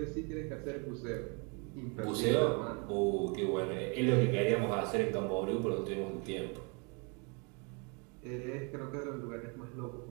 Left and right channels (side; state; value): left; quieter; 34.0 dB